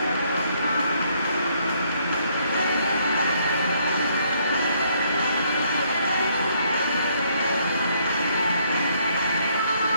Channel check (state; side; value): inverted; both; correlation -0.69